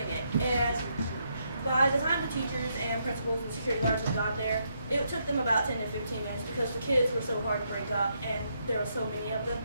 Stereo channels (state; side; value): inverted; both; correlation -0.77